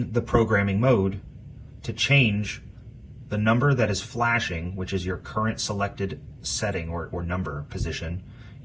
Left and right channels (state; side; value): identical; both; correlation 1.00